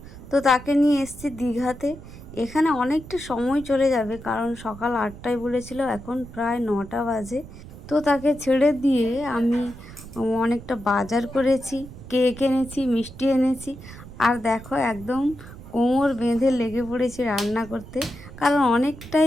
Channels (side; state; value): right; noise; rumble, 15 dB below the sound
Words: তো তাকে নিয়ে এসেছি দীঘাতে। এখানে অনেকটা সময় চলে যাবে, কারণ সকাল 8টায় বলেছিল, এখন প্রায় 9টা বাজে। তো তাকে ছেড়ে দিয়ে আমি অনেকটা বাজার করেছি, কেক এনেছি, মিষ্টি এনেছি। আর দেখো, একদম কোমর বেঁধে লেগে পড়েছি রান্না করতে, কারণ